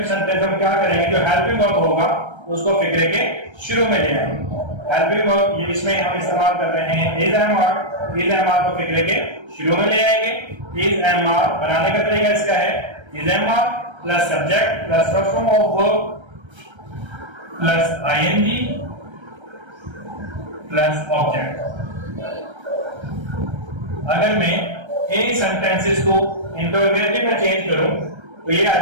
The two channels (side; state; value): left; late; 1.3 ms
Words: सेंटेंस हम क्या करेंगे, जो हेल्पिंग वर्ब होगा उसको फिक्रे के शुरू में ले आएंगे। हेल्पिंग वर्ब ये इसमें हम इस्तेमाल कर रहे हैं is am are. Is am are को फिक्रे के शुरू में ले आएंगे। इज एम आर बनाने का तरीका इसका है, is am are plus subject plus first form of verb plus ING plus object. अगर मैं इन सेंटेंसेस को इंटरोगेटिव में चेंज करूं तो ये आ